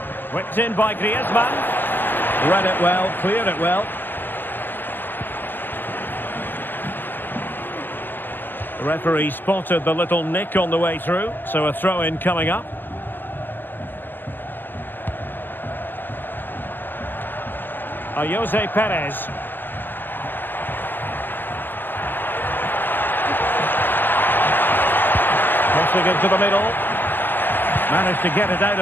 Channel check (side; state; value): right; late; 0.094 ms